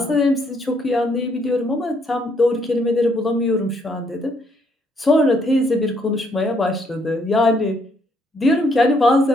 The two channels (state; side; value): normal; both; correlation 0.70